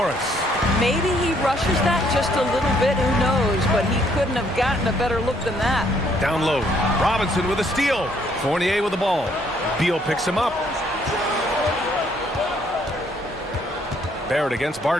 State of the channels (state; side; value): normal; both; correlation 0.67